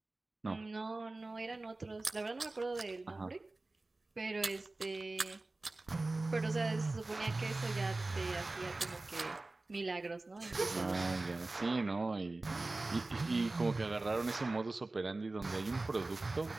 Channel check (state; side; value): quieter; left; 3.1 dB